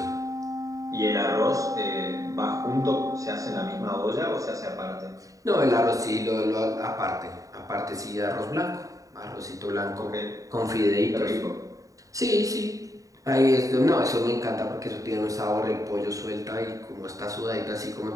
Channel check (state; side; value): late; left; 0.16 ms